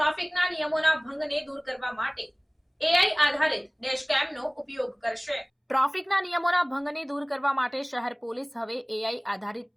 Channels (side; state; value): both; identical; correlation 1.00